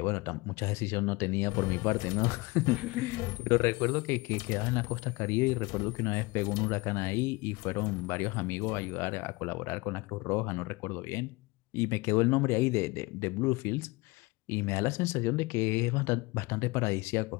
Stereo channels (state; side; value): quieter; right; 23.8 dB